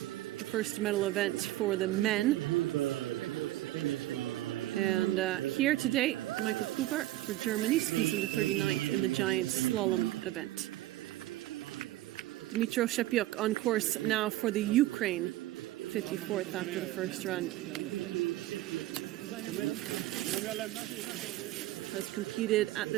the first medal event for the men. And here today, Michael Huber for Germany skis into 39th in the giant slalom event. Dmytro Shepiuk on course now for the Ukraine, 54th after the first run. Has competed at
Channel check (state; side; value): quieter; left; 16.0 dB